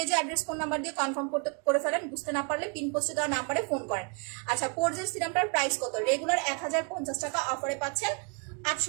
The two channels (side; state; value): left; quieter; 35.7 dB